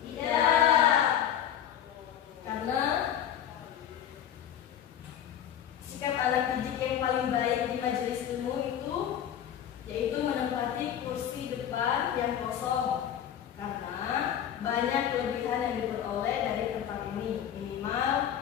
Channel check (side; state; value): right; quieter; 10.0 dB